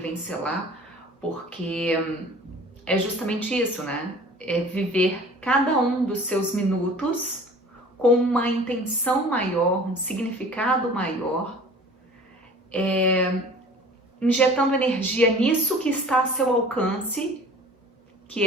selar, porque é justamente isso, né? É viver cada um dos seus minutos com uma intenção maior, um significado maior, injetando energia nisso que está a seu alcance,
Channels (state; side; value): normal; both; correlation 0.45